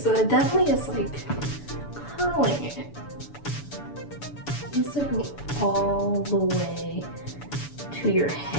it definitely is like curling it. It needs to go all the way to your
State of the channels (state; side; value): late; right; 6.9 ms